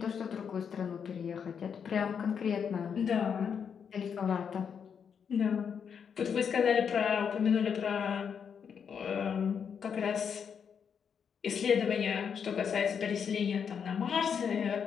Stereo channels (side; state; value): right; quieter; 7.1 dB